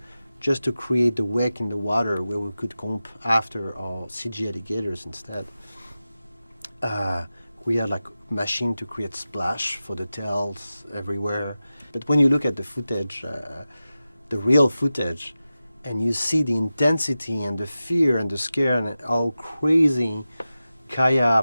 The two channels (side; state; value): both; inverted; correlation -0.94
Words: just to create the wake in the water where we could comp after our CG alligators instead. We had like machine to create splash for the tails everywhere. But when you look at the footage, the real footage, and you see the intensity and the fear and the scare and how crazy